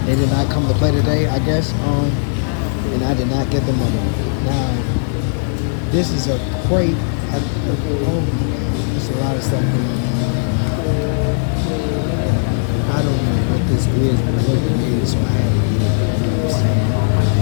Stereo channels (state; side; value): silent; right; 62 dB below the other